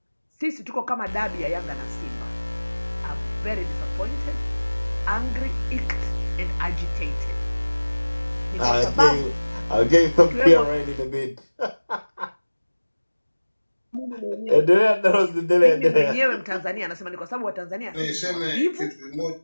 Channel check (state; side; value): inverted; both; correlation -1.00